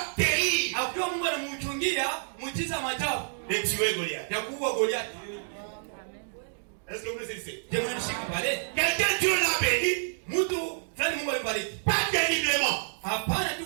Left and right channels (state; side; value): silent; left; digital silence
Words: terrible de tuer Goliath. Est-ce que vous le savez? Quelqu'un Dieu l'a béni, pas terriblement, pas